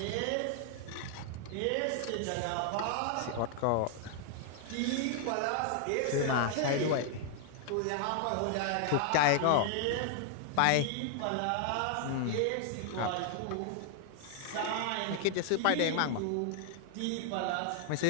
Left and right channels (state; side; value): different; both; correlation 0.00